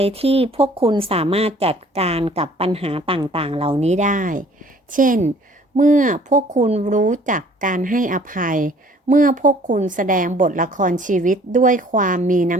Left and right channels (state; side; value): normal; both; correlation 0.55